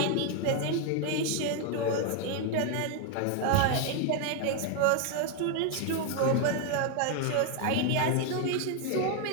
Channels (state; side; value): different; both; correlation 0.01